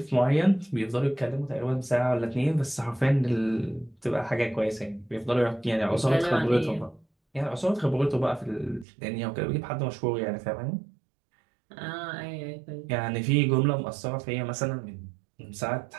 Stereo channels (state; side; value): drops out; left; at 8.8 s